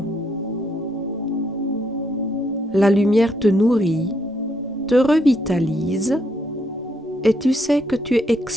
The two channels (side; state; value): both; normal; correlation 0.74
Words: La lumière te nourrit, te revitalise et tu sais que tu es